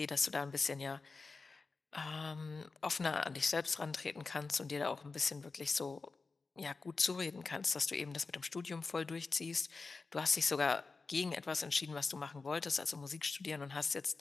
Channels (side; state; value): right; quieter; 4.1 dB